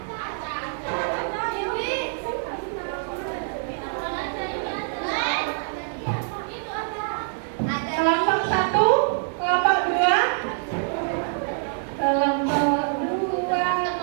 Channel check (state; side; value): silent; left; digital silence